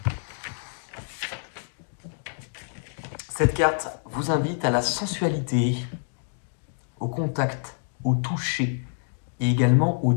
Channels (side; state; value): right; silent; digital silence